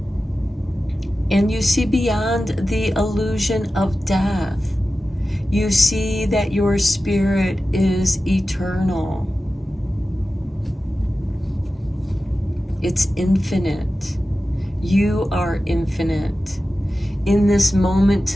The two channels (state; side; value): normal; both; correlation 0.94